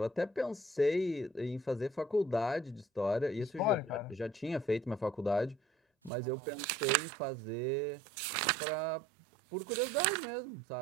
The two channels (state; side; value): drops out; left; at 6.1 s